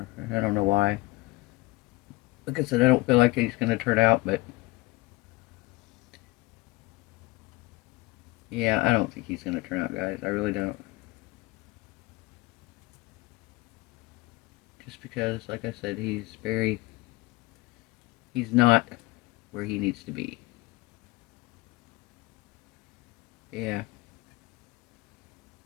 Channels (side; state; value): right; quieter; 21.6 dB